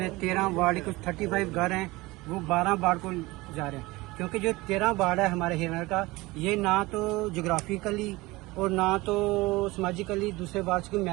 13 वार्ड कुछ 35 घर हैं वो 12 वार्ड को जा रहे हैं, क्योंकि जो 13 वार्ड है हमारे हीरानगर का, ये ना तो जोग्राफिकली और ना तो समाजिकली दूसरे वार्ड को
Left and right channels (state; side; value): quieter; left; 21.3 dB